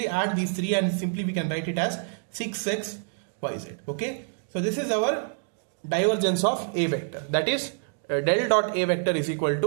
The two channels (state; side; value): silent; left; digital silence